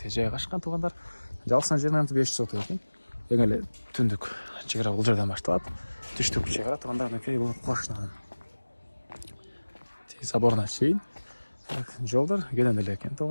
жайгашкан туугандар. Жалпысынан жерин 500 сот экен. Эң эле түндүк чек ара бул жерден башталат. Түштүк чек ара туугандар, мынакей бул кошунан. Заборуна чейин. Жолдор кенен эле экен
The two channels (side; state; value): both; inverted; correlation -1.00